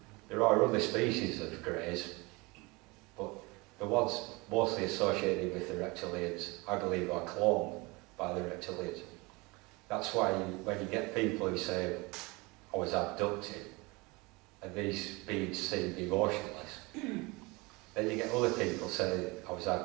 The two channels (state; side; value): quieter; left; 25.3 dB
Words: There are other species of greys, but the ones mostly associated with the reptilians, I believe, are cloned by the reptilians. That's why when you get people who say, I was abducted, and these beings seem emotionless, then you get other people saying, I was